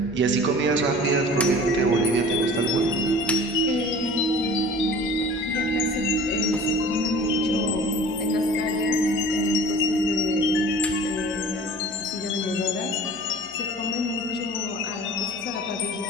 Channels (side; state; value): left; noise; hum, 28 dB below the sound